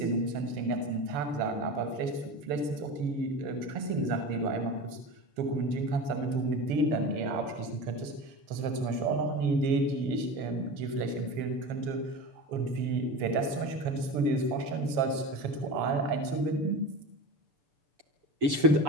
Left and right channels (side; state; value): left; late; 6.9 ms